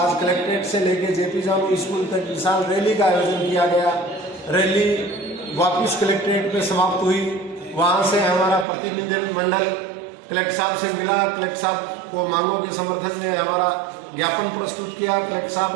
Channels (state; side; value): drops out; left; at 8.7 s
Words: कलेक्ट्रेट से लेकर जेपी जानू स्कूल तक विशाल रैली का आयोजन किया गया। रैली वापस कलेक्ट्रेट पे समाप्त हुई। वहाँ से हमारा प्रतिनिधिमंडल कलेक्टर साहब से मिला। कलेक्टर साहब को मांगों के समर्थन में हमारा ज्ञापन प्रस्तुत किया। कलेक्टर